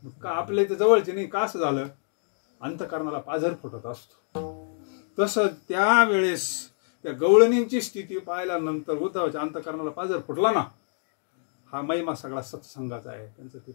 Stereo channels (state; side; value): silent; right; digital silence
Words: आपल्या इथे जवळचे नाही का? असं झालं, अंतकरणाला पाझर फुटत असतो. तसं त्यावेळेस त्या गवळणींची स्थिती पाहिल्यानंतर उद्धवाच्या अंतकरणाला पाझर फुटला ना. हा महिमा सगळा सत्संगाचा आहे. त्यांचं ते